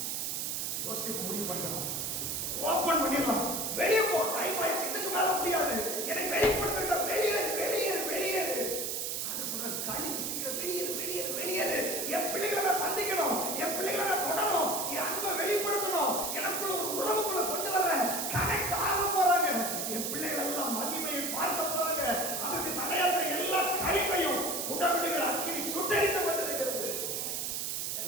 யோசிப்பு முடிவு பண்ணலாம், ஓபன் பண்ணிடலாம், வெளியே போ, டைம் ஆயிடுச்சு, இதுக்கு மேல முடியாது, என்னை வெளிப்படுத்த, வெளியேறு வெளியேறு வெளியேறு. கழிவு சீக்கிரம் வெளியேறு வெளியேறு வெளியேறு. என் பிள்ளைகளை நான் சந்திக்கணும், என் பிள்ளைகளை நான் தொடணும், என் அன்பை வெளிப்படுத்தணும், எனக்குள்ள ஒரு உறவுக்குள்ள கொண்டு வர்றேன், கனெக்ட் ஆக போறாங்க, என் பிள்ளைகள் எல்லாம் மகிமையை பார்க்க போறாங்க. அதற்கு தடையாக எல்லா கழிவையும் உடவிடுகிற அக்கினி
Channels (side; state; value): right; noise; hiss, 1 dB below the sound